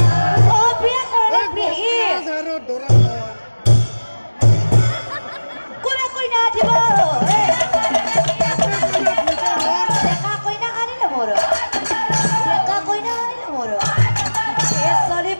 ও বিয়ে করে বিয়ে কোনে কই না দিব দেখা কই না আনিলে মোর দেখা কই না আনিলে মোর এ সরি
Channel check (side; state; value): both; inverted; correlation -1.00